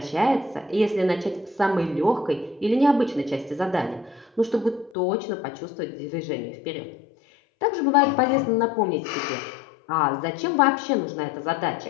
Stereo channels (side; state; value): right; drops out; at 4.9 s